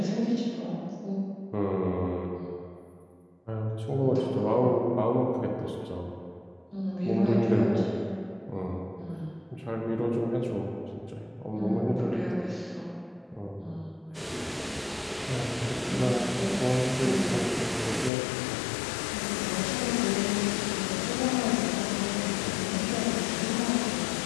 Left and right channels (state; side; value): drops out; right; at 18.1 s